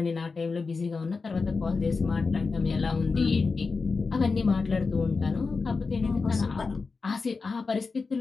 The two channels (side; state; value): right; quieter; 4.4 dB